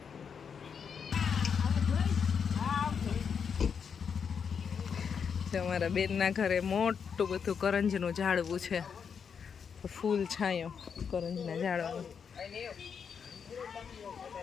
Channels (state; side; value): quieter; right; 6.7 dB